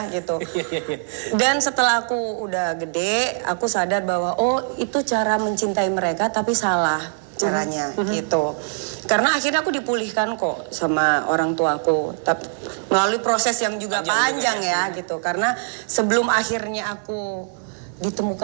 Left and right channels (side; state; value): left; silent; digital silence